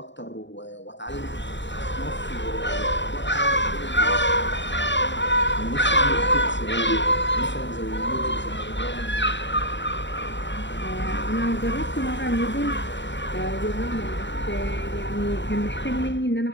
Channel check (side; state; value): right; late; 0.53 ms